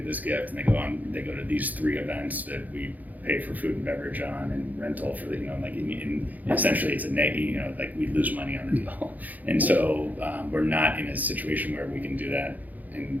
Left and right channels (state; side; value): late; left; 0.081 ms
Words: this gift and they go to these 3 events that we pay for food and beverage on and rental for the, essentially it's a net, like we lose money on the deal. And so we're not in a situation where we can do that